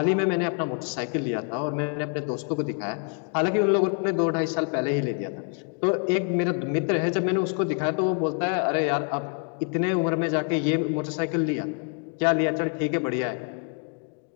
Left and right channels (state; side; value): quieter; right; 39.1 dB